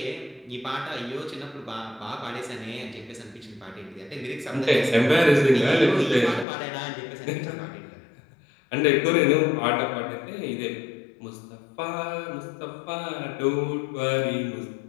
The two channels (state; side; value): drops out; right; at 6.5 s